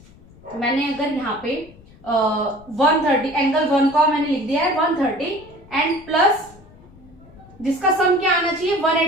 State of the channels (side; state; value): left; noise; rumble, 24 dB below the sound